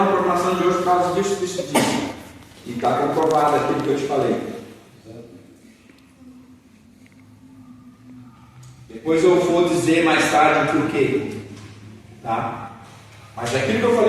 programação de hoje por causa disso. E está comprovado aquilo que eu te falei. Depois eu vou dizer mais tarde por quê. Tá? Mas aquilo que eu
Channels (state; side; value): identical; both; correlation 1.00